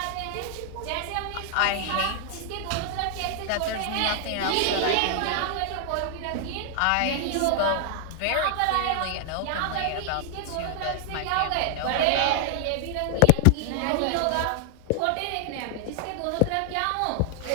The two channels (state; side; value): different; both; correlation 0.00